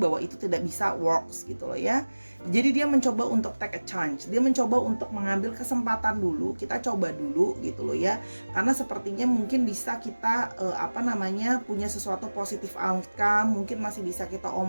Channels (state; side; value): inverted; both; correlation -1.00